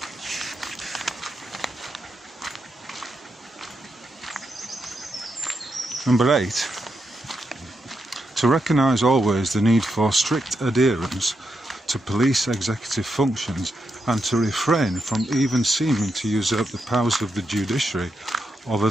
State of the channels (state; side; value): normal; both; correlation 0.84